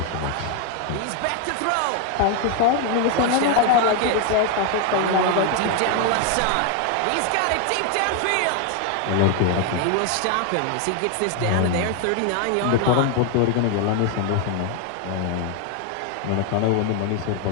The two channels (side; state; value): both; different; correlation 0.01